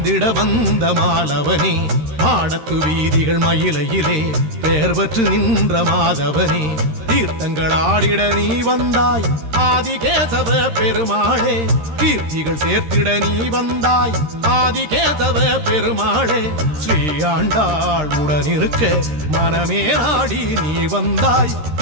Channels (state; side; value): late; left; 13 ms